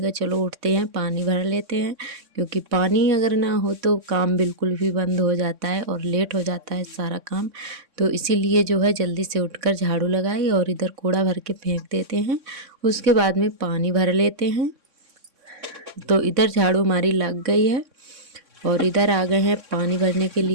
कहा चलो उठते हैं, पानी भर लेते हैं। क्योंकि पानी अगर ना हो तो काम बिल्कुल भी बंद हो जाता है और लेट हो जाता है सारा काम। तो इसीलिए जो है जल्दी से उठकर झाड़ू लगाई और इधर कूड़ा भर के फेंक देते हैं, उसके बाद में पानी भर लेते हैं। तो इधर झाड़ू हमारी लग गई है और इधर आ गए हैं पानी भरने के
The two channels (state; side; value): late; left; 3.6 ms